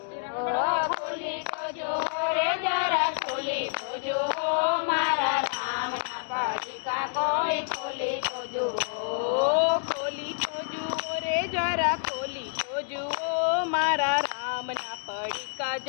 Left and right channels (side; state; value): right; silent; digital silence